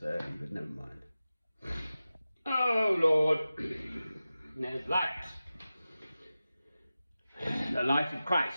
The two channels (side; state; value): both; inverted; correlation -0.95